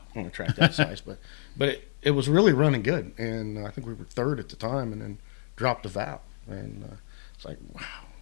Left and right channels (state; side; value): silent; right; 59 dB below the other